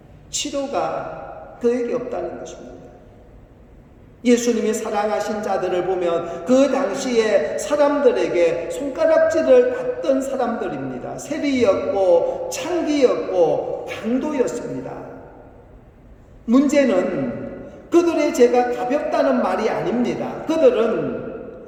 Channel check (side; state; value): both; identical; correlation 1.00